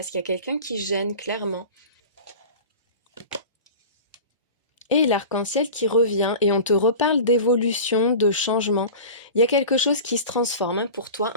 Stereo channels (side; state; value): both; inverted; correlation -0.34